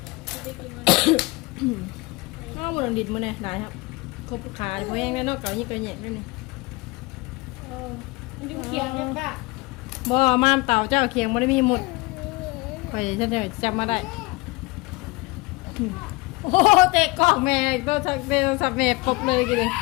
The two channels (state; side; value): quieter; right; 24.1 dB